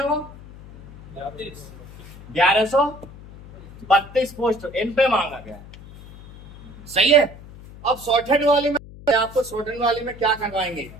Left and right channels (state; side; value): noise; left; hum, 18 dB below the sound